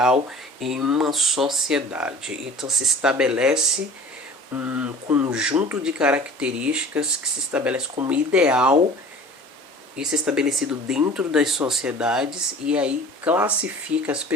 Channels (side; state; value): both; normal; correlation 0.44